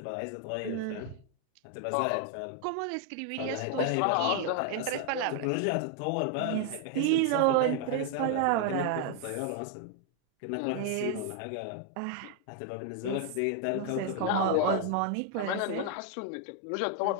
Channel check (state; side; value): different; both; correlation 0.00